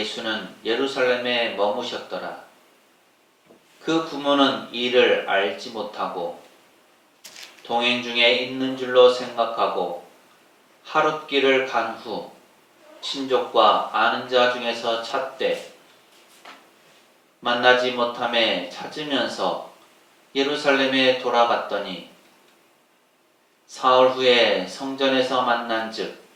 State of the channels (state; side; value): identical; both; correlation 1.00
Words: 예루살렘에 머무셨더라. 그 부모는 이를 알지 못하고 동행 중에 있는 줄로 생각하고 하룻길을 간 후 친족과 아는 자 중에서 찾되 만나지 못함에 찾으면서 예루살렘에 돌아갔더니 사흘 후에 성전에서 만난즉